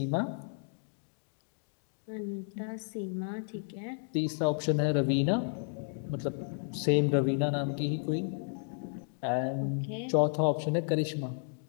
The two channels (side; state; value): right; silent; digital silence